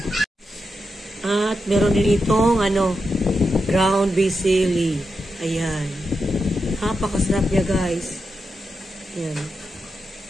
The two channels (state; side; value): normal; both; correlation 0.87